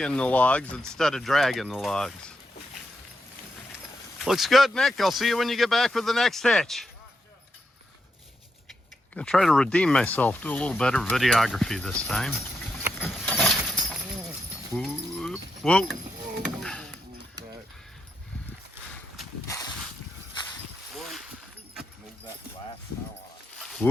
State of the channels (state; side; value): normal; both; correlation 0.83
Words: the logs instead of dragging the logs. Looks good, Nick. I'll see you when you get back with the next hitch. Gonna try to redeem myself, do a little better videography this time. Whoop, whoa.